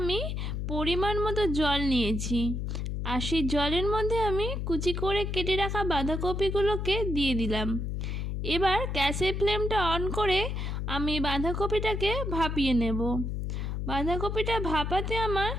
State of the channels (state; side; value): noise; left; hum, 2 dB below the sound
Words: পরিমাণ মতো জল নিয়েছি আর সেই জলের মধ্যে আমি কুচি করে কেটে রাখা বাঁধাকপিগুলোকে দিয়ে দিলাম। এবার গ্যাসের ফ্লেমটা অন করে আমি বাঁধাকপিটাকে ভাপিয়ে নেব। বাঁধাকপিটা ভাপাতে আমার